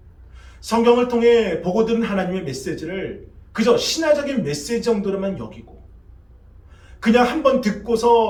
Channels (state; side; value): identical; both; correlation 1.00